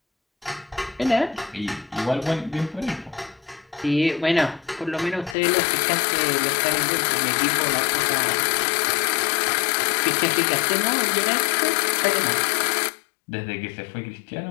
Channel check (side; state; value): right; drops out; at 5.4 s